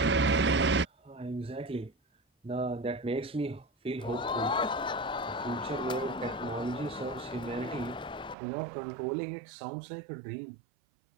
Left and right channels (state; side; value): drops out; left; at 8.3 s